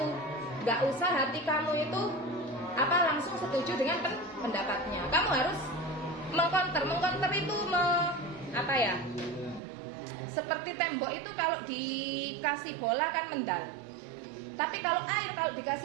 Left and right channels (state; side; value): drops out; left; at 9.6 s